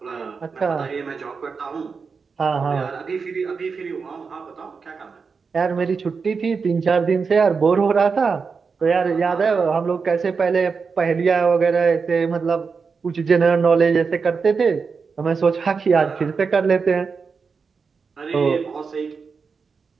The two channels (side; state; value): left; quieter; 5.2 dB